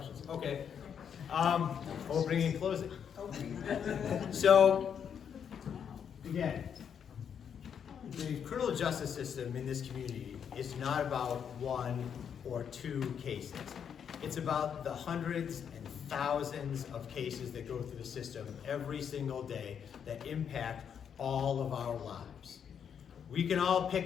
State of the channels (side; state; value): right; quieter; 7.8 dB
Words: Okay. Opening and closing. So, Again, the criminal justice system in this community is not about one or two cases. It's about the hundreds and thousands of cases that go through the system every single day that impact all of our lives. We can all